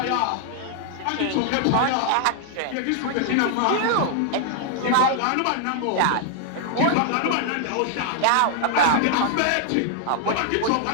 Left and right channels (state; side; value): different; both; correlation 0.00